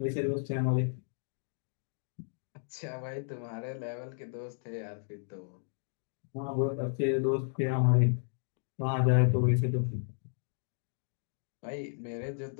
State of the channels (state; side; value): silent; right; digital silence